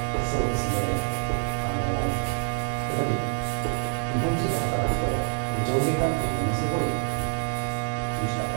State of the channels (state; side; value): silent; left; 61 dB below the other